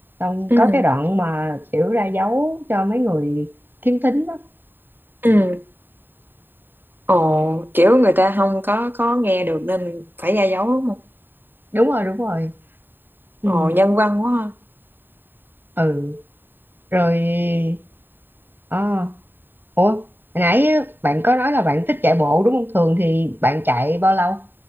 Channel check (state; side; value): late; left; 0.094 ms